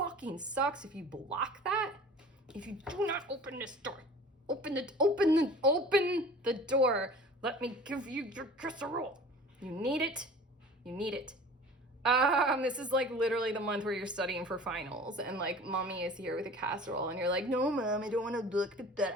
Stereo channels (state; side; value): normal; both; correlation 0.43